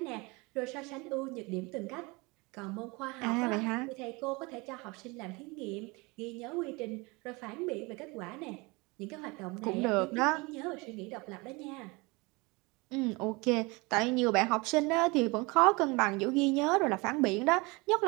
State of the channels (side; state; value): left; quieter; 26.0 dB